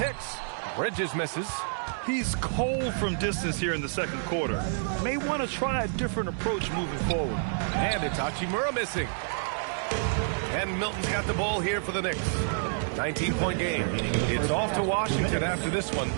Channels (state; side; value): silent; left; 59 dB below the other